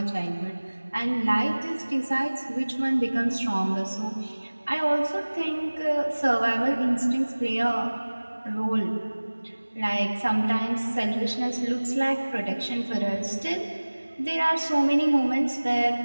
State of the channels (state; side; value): inverted; both; correlation -1.00